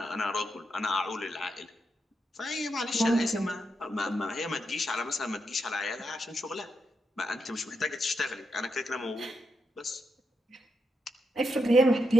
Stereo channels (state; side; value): normal; both; correlation 0.83